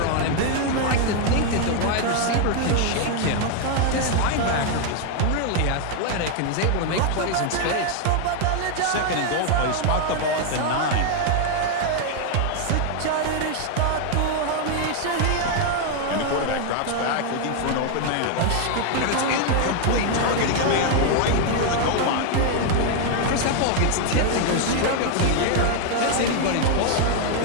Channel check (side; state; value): both; different; correlation 0.00